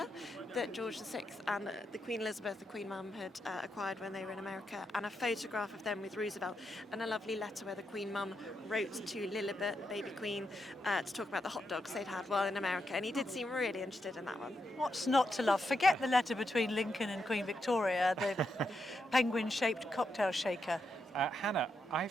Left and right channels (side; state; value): both; normal; correlation 0.83